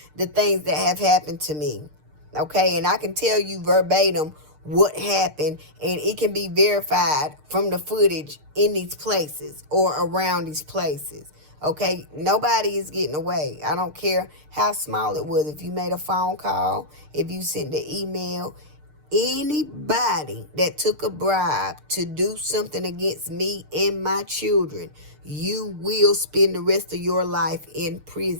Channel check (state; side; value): late; left; 6.6 ms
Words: the things that have happened to me. Okay, and I can tell you verbatim what happened, and it can be verified from the footage in these places or around these places. Okay, nobody is getting away. I don't care how small it was. If you made a phone call, if you sent the email, anybody that took a bribe to do something against me and my children, you will spend the rest of your life in